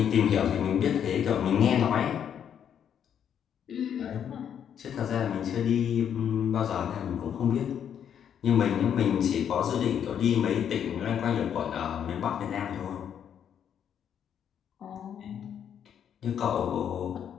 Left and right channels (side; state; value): right; quieter; 8.8 dB